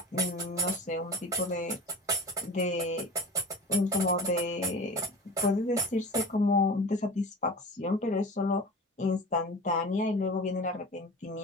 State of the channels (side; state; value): both; normal; correlation 0.34